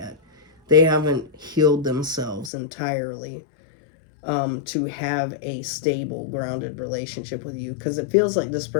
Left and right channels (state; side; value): drops out; right; at 2.5 s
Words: They haven't healed themselves entirely to have a stable, grounded relationship with you, because it feels like this